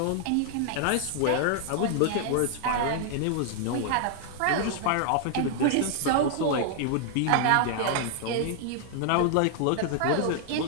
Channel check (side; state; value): both; different; correlation 0.00